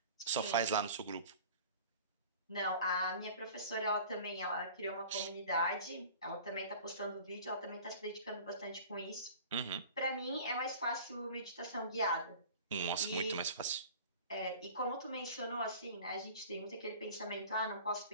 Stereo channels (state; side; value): inverted; both; correlation -0.42